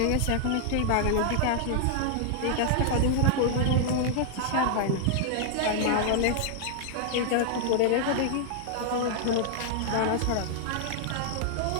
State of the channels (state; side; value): different; both; correlation -0.01